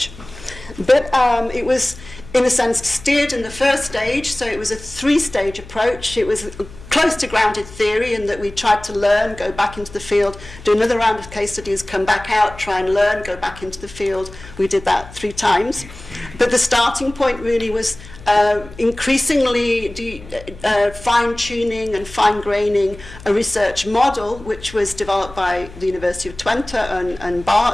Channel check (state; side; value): noise; left; hum, 18 dB below the sound